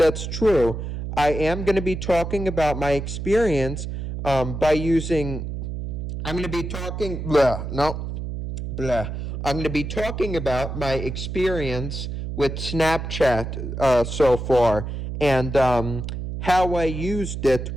true. I am going to be talking about my experience by using, I'm going to be talking, blah, no, blah. I'm going to be talking about my experience with Snapchat so far, and how I used it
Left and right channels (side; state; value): right; noise; hum, 5 dB below the sound